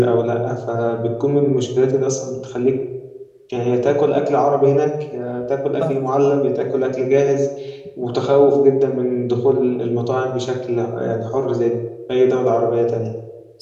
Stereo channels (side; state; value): both; identical; correlation 1.00